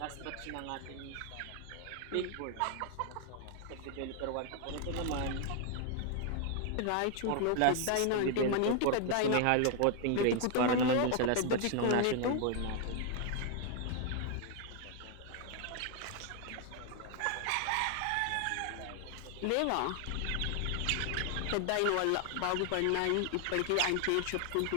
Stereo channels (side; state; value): both; different; correlation 0.00